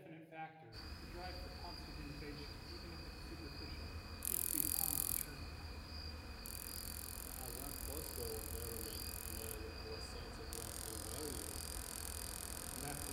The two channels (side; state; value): both; identical; correlation 1.00